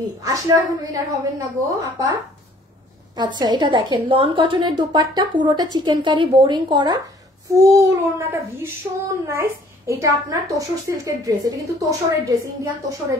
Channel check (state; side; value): normal; both; correlation 0.57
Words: আসলে এখন উইনার হবেন না গো আপা। আচ্ছা, এটা দেখেন লন কটনের দুপাট্টা, পুরোটা চিকেন কারি বোরিং করা, ফুল ওড়নাটা ভীষণ নাইস। এটা আপনার তোষর সিল্কের ড্রেস, এটা কিন্তু তোষরের ড্রেস, ইন্ডিয়ান তোষরের